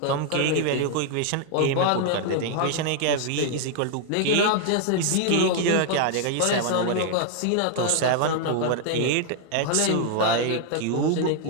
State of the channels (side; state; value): both; different; correlation 0.00